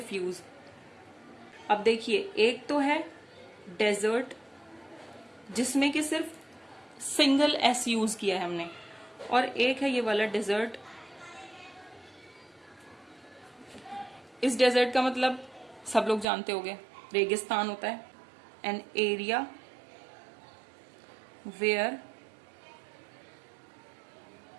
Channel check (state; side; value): drops out; left; at 16.2 s